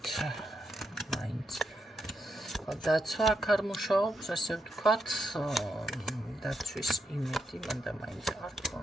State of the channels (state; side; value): normal; both; correlation 0.82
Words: მაინც. დაცვა აქ არ მუშაობს, ასე ვთქვათ, დაცვის იმედი მანდა მაინც არ